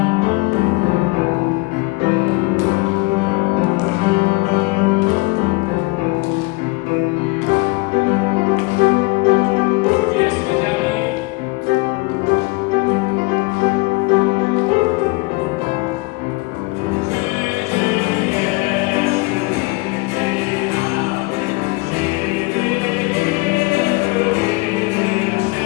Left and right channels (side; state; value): right; quieter; 25.4 dB